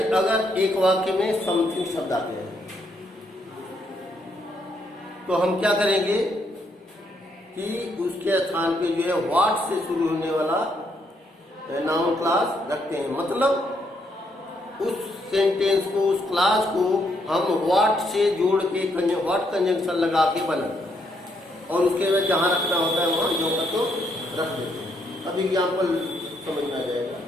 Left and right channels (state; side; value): normal; both; correlation 0.74